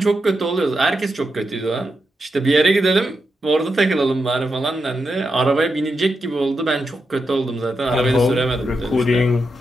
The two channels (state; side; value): normal; both; correlation 0.86